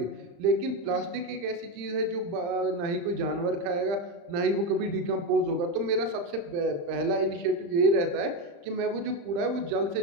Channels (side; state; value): left; late; 35 ms